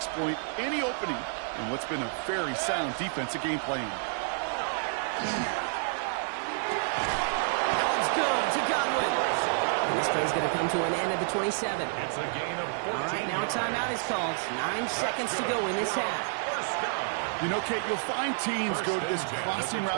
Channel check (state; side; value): silent; left; digital silence